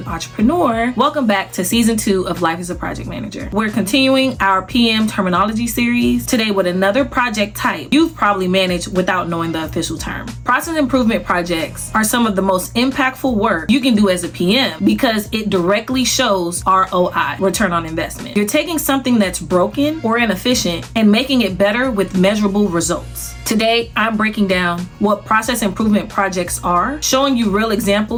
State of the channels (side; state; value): both; identical; correlation 1.00